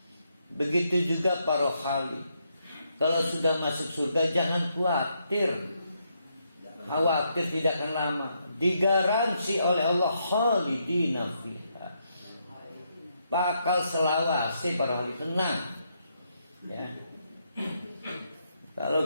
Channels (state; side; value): inverted; both; correlation -0.78